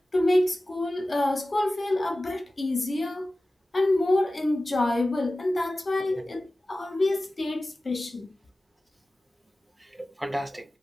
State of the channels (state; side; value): normal; both; correlation 0.96